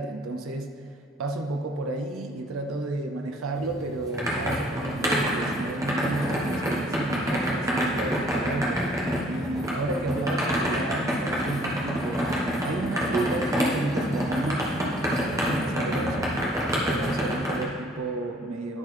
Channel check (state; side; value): normal; both; correlation 0.58